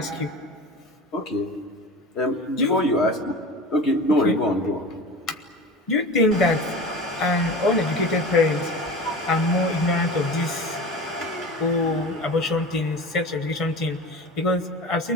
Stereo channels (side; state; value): both; normal; correlation 0.33